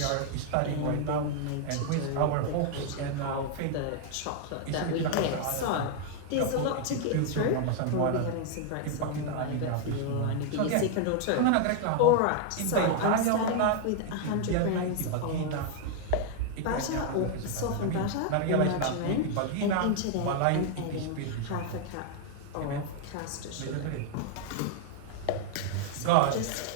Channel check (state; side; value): different; both; correlation 0.00